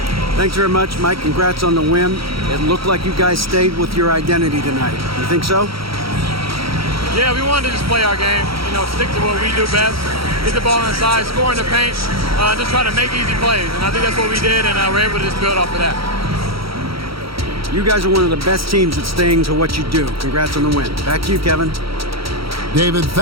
Thanks very much, Mike. Congrats on the win. It looked like you guys stayed with your identity tonight. You think so? Yeah, we wanted to just play our game, you know, stick to what we do best, get the ball inside, score in the paint, just try to make easy plays. And I think that's what we did, and we're able to just build off of that. You guys are one of the best teams at staying to what you do. Congrats on the win. Back to you, Kevin. David,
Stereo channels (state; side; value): late; left; 0.75 ms